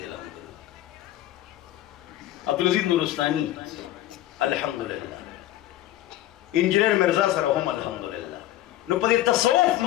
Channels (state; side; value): quieter; right; 14.2 dB